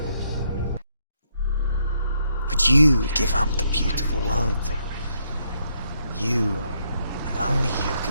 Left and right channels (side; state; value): both; inverted; correlation -0.74